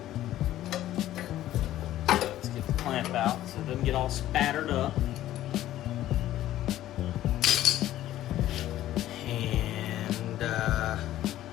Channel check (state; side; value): quieter; right; 13.6 dB